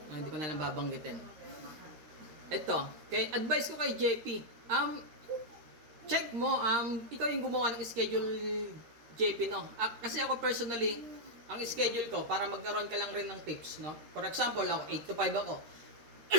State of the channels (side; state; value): left; late; 13 ms